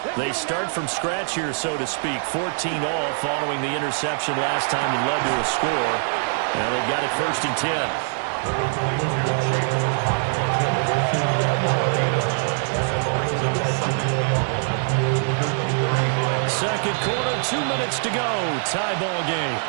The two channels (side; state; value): left; silent; 63 dB below the other